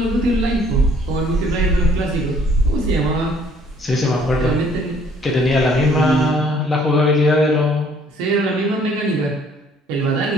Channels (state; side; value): normal; both; correlation 0.60